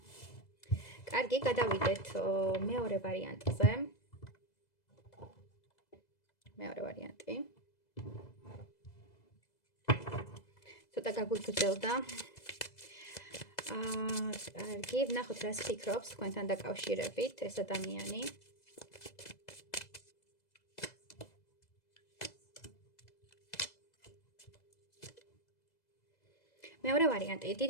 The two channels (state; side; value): late; right; 2.0 ms